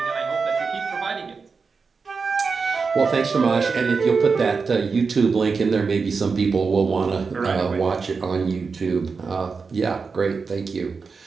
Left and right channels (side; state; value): left; quieter; 4.9 dB